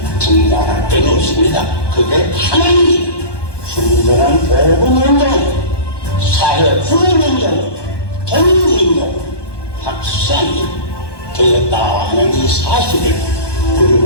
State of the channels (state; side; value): late; right; 1.2 ms